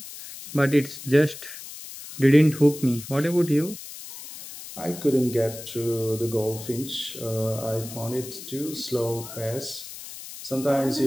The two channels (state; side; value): noise; left; hiss, 13 dB below the sound